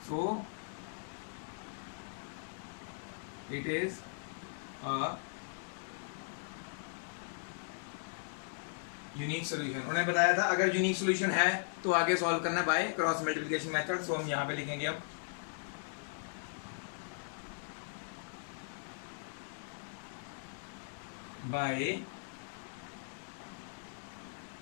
so it is a unique solution. उन्होंने बताया था अगर यूनिक सॉल्यूशन है तो आगे सॉल्व करना बाय क्रॉस मल्टीप्लिकेशन मेथड। सो हम यहां पे लिखेंगे अब बाय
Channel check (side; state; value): right; silent; digital silence